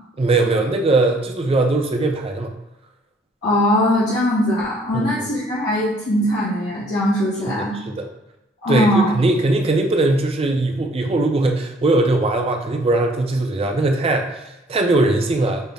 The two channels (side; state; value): both; normal; correlation 0.60